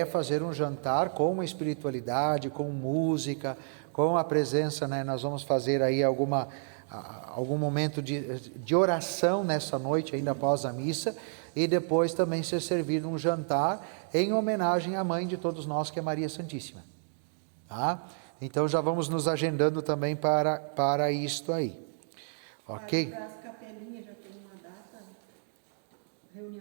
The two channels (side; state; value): left; silent; digital silence